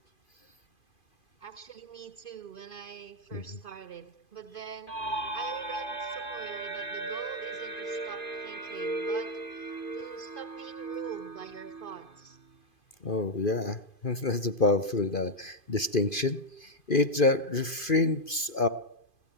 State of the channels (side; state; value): right; late; 2.5 ms